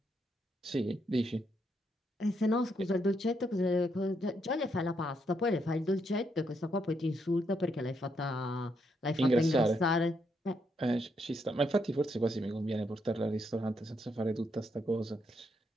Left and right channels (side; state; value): both; normal; correlation 0.77